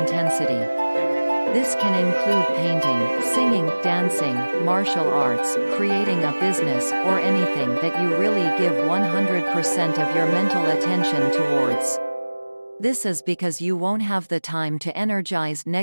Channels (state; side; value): inverted; both; correlation -1.00